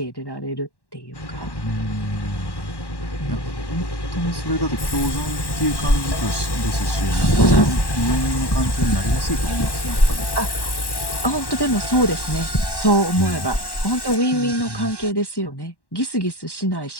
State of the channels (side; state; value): right; late; 1.1 ms